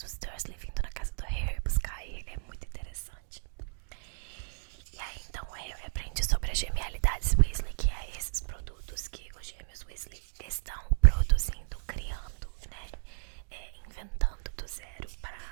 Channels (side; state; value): left; silent; digital silence